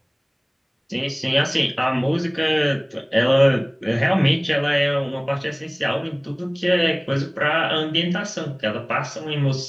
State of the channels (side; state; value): both; identical; correlation 1.00